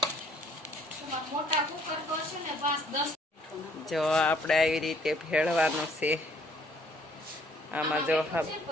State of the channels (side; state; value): both; normal; correlation 0.62